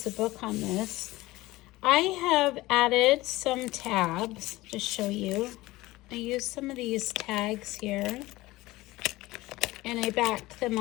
the book on this. I have added some tabs to show you. I used some of these tags here, and I backed them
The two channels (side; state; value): right; quieter; 19.0 dB